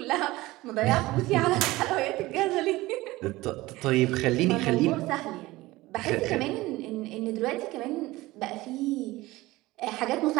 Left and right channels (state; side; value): quieter; left; 19.1 dB